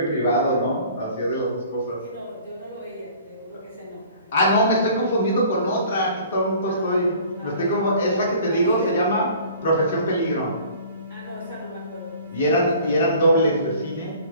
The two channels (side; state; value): both; inverted; correlation -0.49